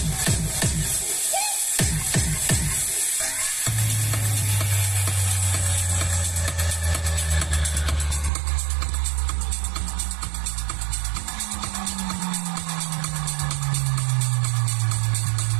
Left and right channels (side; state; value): left; drops out; at 8.3 s